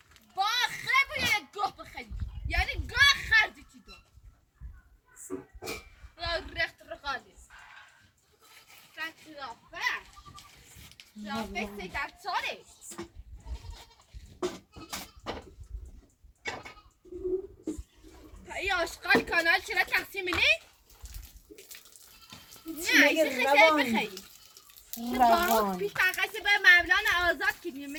یعنی گاه خردی چی دو رخت رقالی رافه سی در ساله ای آشقال کانال چرا تقسیم نی؟ نه ایسی خیلی بخیری روانی پیش تقصی به مولانا آزاد کنیم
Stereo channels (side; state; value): both; identical; correlation 1.00